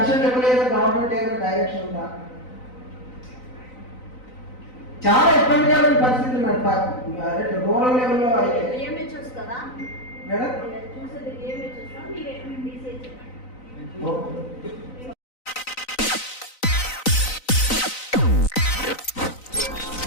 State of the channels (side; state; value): right; late; 3.9 ms